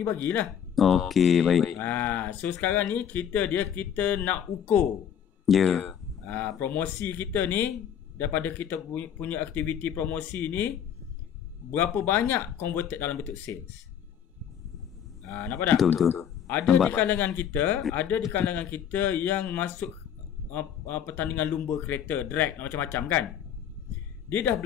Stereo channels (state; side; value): quieter; right; 8.9 dB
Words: bagilah. Okey, baik. So sekarang ni kita nak ukur. Ya. Promosi kita ni, daripada kita punya aktiviti promosi ni, berapa banyak converted dalam bentuk sales. Nampak tak? Betul. Ada di kalangan kita yang masuk pertandingan lumba kereta, drag macam-macam kan. Dia dah